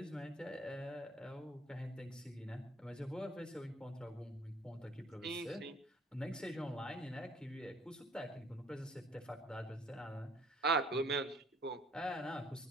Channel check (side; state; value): both; normal; correlation 0.57